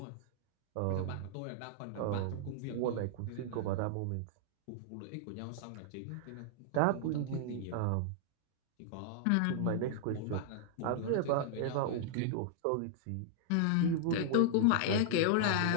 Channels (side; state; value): both; different; correlation -0.01